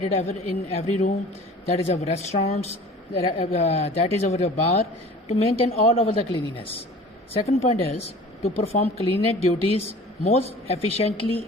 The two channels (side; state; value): both; normal; correlation 0.44